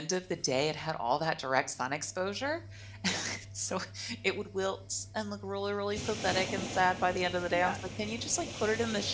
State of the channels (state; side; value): identical; both; correlation 1.00